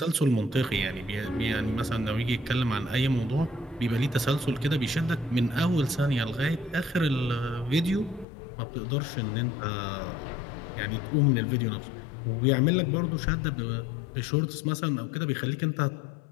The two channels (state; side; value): drops out; right; at 8.2 s